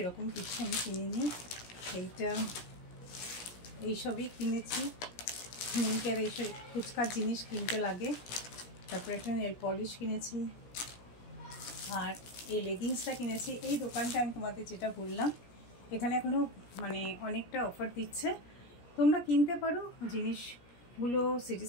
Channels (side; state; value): right; late; 17 ms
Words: কিছু আমি কিনিনি। এইসবই কিনেছি, মিঙ্কের এইসব ফুচকার জিনিস কিনতে লাগে, তারপর একটা নেল পলিশ কিনেছি, আর এই লেগিংসটা কিনেছি। এই দোকানটা আমি তোমাদের যেটা বললাম, এখানে এখনও মানে অনেকটা অফার দিচ্ছে, তোমরা কিনতে পারো জিনিসগুলো। সিটি